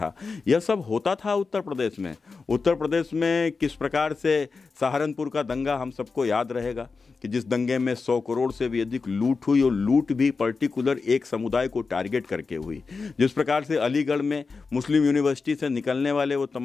यह सब होता था उत्तर प्रदेश में। उत्तर प्रदेश में किस प्रकार से सहारनपुर का दंगा हम सबको याद रहेगा कि जिस दंगे में 100 करोड़ से भी अधिक लूट हुई, और लूट भी पर्टिकुलर एक समुदाय को टारगेट करके हुई। जिस प्रकार से अलीगढ़ में मुस्लिम यूनिवर्सिटी से निकलने वाले वो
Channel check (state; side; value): quieter; right; 4.5 dB